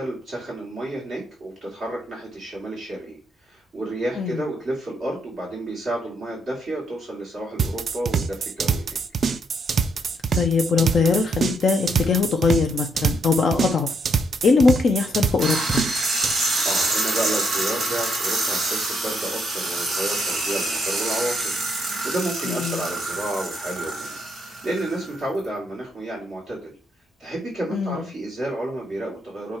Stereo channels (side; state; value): both; normal; correlation 0.75